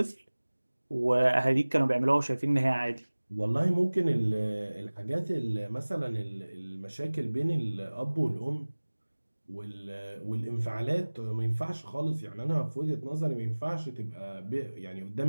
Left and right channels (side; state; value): both; inverted; correlation -1.00